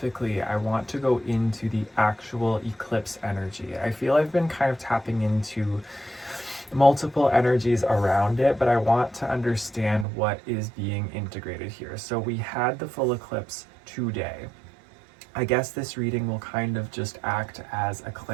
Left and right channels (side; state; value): left; drops out; at 10.1 s